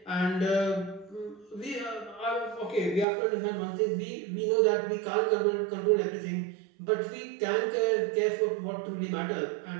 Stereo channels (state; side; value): drops out; left; at 3.1 s